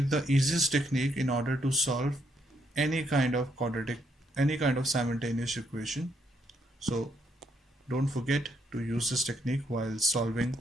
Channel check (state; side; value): normal; both; correlation 0.73